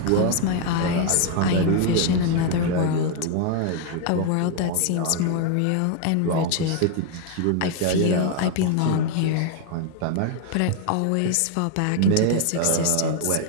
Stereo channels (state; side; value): different; both; correlation 0.00